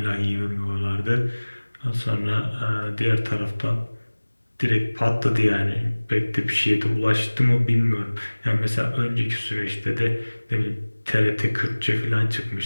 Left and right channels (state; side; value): inverted; both; correlation -1.00